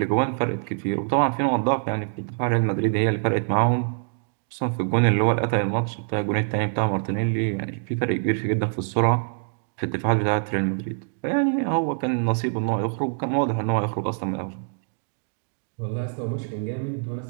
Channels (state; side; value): silent; left; digital silence